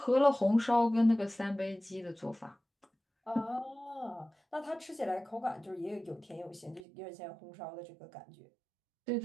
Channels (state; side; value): drops out; left; at 6.9 s